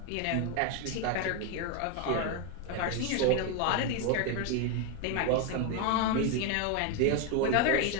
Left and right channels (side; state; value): both; different; correlation 0.01